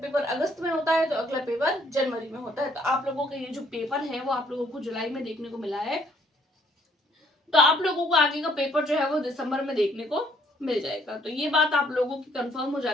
अगस्त में होता है तो अगला पेपर जनवरी में होता है। तो आप लोगों का ये जो पेपर है वो आप लोगों को जुलाई में देखने को मिला है, तो आप लोगों को आगे का पेपर जो है वो दिसंबर में देखने को मिल जाएगा। तो ये बात आप लोगों की कंफर्म हो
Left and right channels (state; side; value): normal; both; correlation 0.64